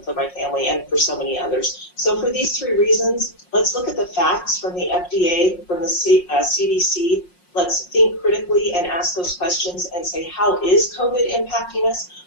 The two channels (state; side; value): late; right; 5.6 ms